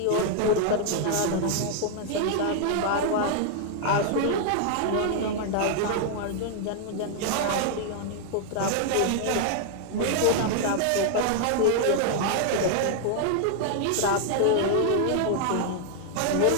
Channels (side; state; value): both; different; correlation 0.00